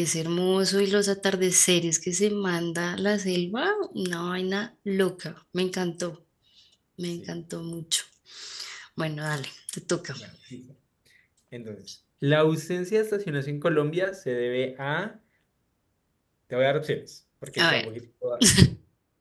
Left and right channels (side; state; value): both; identical; correlation 1.00